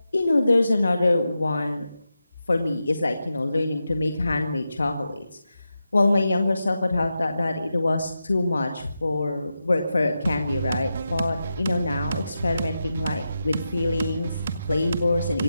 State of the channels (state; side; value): inverted; both; correlation -0.89